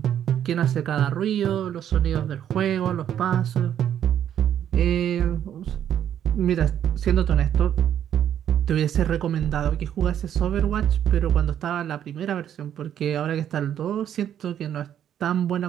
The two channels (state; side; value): quieter; left; 10.0 dB